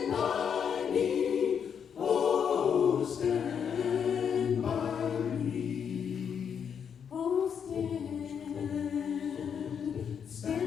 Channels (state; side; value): quieter; right; 7.5 dB